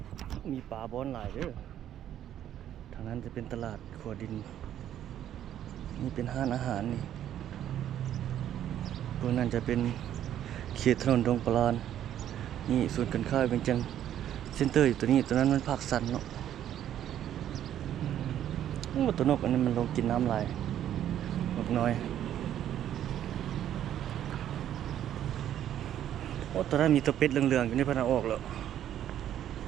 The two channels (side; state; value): left; quieter; 11.0 dB